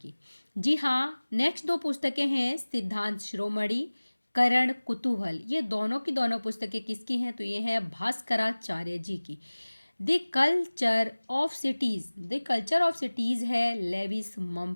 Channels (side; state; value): both; inverted; correlation -1.00